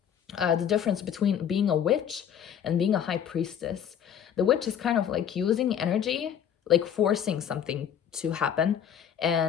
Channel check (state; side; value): quieter; right; 8.9 dB